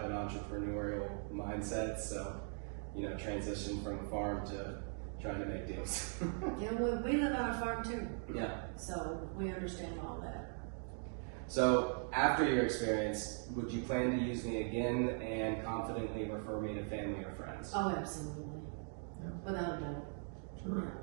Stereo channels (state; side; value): silent; left; 51 dB below the other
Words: an entrepreneurial mindset. So, transition from a farm to trying to make deals. Yeah, well, we live on a farm too, Yeah. so we understand all that. So after your experience, would you plan to use me again and confidently refer me to family or friends? Oh, absolutely. Yeah. Without a doubt. Sure.